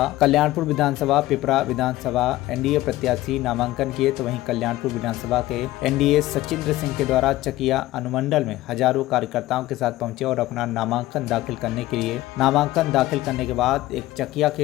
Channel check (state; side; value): quieter; right; 16.7 dB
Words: कल्याणपुर विधानसभा, पिपरा विधानसभा एनडीए प्रत्याशी नामांकन किए। तो वहीं कल्याणपुर विधानसभा के एनडीए सचिंद्र सिंह के द्वारा चकिया अनुमंडल में हजारों कार्यकर्ताओं के साथ पहुंचे और अपना नामांकन दाखिल करने के लिए नामांकन दाखिल करने के बाद एक चकिया